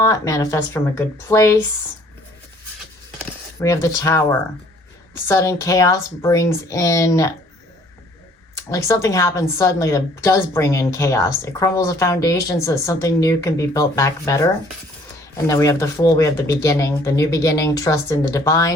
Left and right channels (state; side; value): normal; both; correlation 0.59